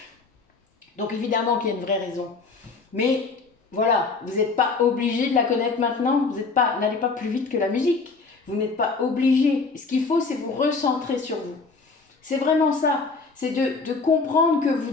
Donc évidemment qu'il y a une vraie raison. Mais voilà, vous n'êtes pas obligé de la connaître maintenant, vous n'allez pas plus vite que la musique. Vous n'êtes pas obligé. Ce qu'il faut, c'est vous recentrer sur vous. C'est vraiment ça. C'est de comprendre que vous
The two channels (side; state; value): right; quieter; 4.3 dB